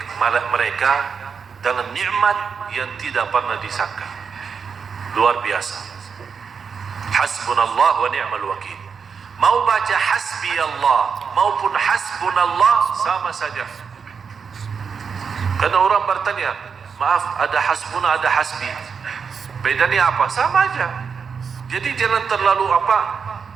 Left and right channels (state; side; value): quieter; left; 6.1 dB